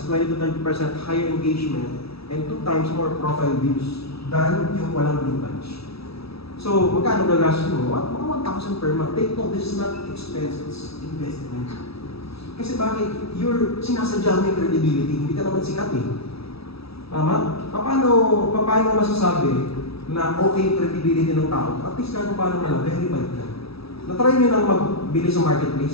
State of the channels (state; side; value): late; right; 0.77 ms